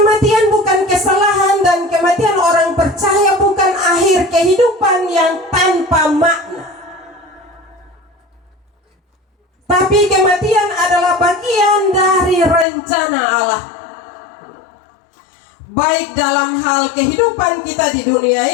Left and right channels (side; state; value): right; drops out; at 12.7 s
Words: bukan kesalahan, dan kematian orang percaya bukan akhir kehidupan yang tanpa makna. Tapi kematian adalah bagian dari rencana Allah, baik dalam hal kehidupan kita di dunia